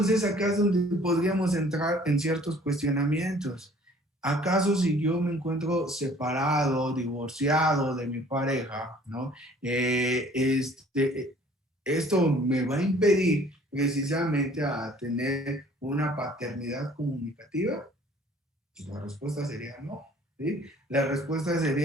acá es donde podríamos entrar en ciertos cuestionamientos. ¿Acaso si yo me encuentro separado, divorciado de mi pareja, ¿no? Esto me va a impedir precisamente a tener una paternidad comunicativa? Pues la respuesta sería no, ¿sí? La respuesta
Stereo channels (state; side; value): normal; both; correlation 0.54